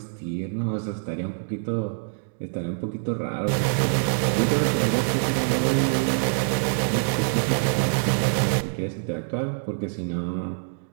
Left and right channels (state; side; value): silent; left; digital silence